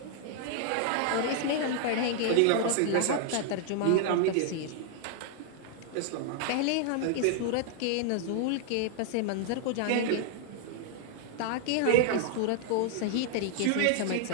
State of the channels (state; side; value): different; both; correlation 0.00